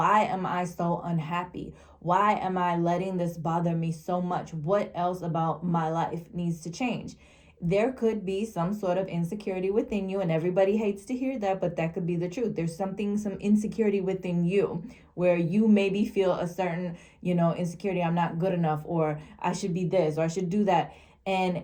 am I so unhappy? Why am I letting this bother me so much? What else about my life needs to change? There could be some sort of insecurity within you, and everybody hates to hear that, but that could be the truth. There's some insecurity within you where you maybe feel a certain, insecurity. I'm not good enough, or I should be this, or I should do that.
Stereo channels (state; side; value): identical; both; correlation 1.00